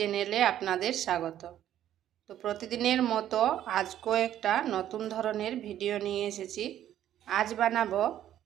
আপনাদের স্বাগত। তো প্রতিদিনের মতো আজকেও একটা নতুন ধরনের ভিডিও নিয়ে এসেছি। আজ বানাবো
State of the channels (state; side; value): quieter; left; 11.5 dB